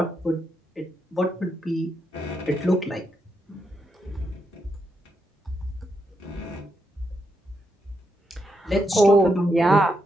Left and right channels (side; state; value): both; normal; correlation 0.82